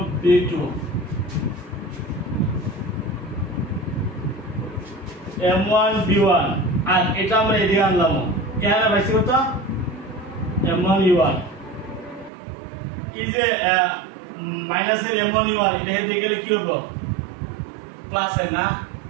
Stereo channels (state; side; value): drops out; left; at 12.3 s